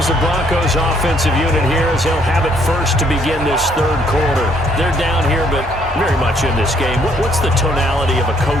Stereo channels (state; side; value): normal; both; correlation 0.67